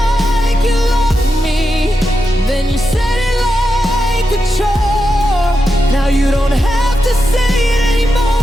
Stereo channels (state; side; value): normal; both; correlation 0.87